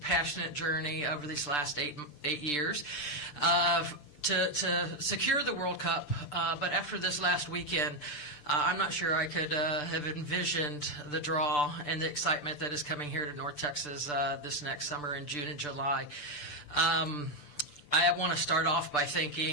journey over these last eight years to secure the World Cup. But after this last weekend, I'm not sure I could have envisioned the draw and the excitement that is coming here to North Texas this next summer in June and July. I want to start off by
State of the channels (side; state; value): right; late; 6.8 ms